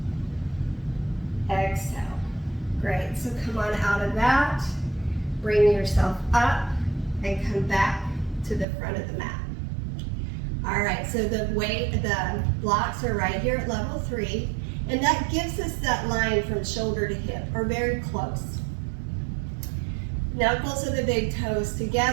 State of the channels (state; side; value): drops out; left; at 8.7 s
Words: Exhale. Great. So come on out of that. Bring yourself up and come back to the front of the mat. All right, so the blocks are right here at level 3, and that gives us that line from shoulder to hip, or very close. Knuckles of the big toes